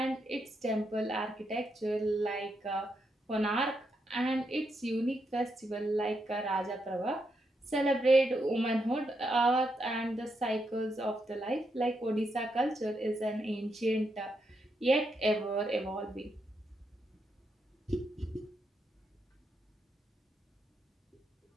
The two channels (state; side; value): normal; both; correlation 0.81